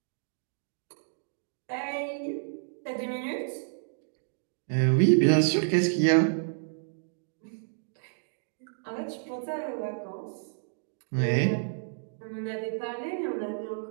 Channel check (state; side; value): silent; left; digital silence